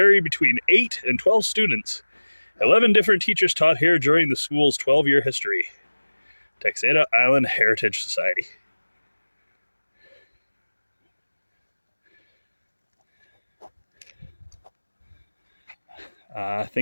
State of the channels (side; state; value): both; inverted; correlation -1.00